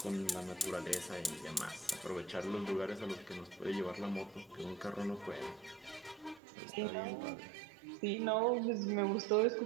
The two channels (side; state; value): left; drops out; at 6.4 s